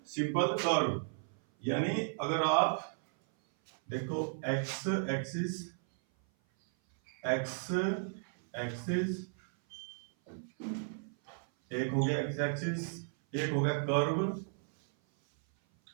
सिंपल कर्व। यानी अगर आप देखो एक्स एक्सिस, एक्स एक्सिस एक हो गया, एक्स एक्सिस एक हो गया, कर्व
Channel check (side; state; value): left; silent; 55 dB below the other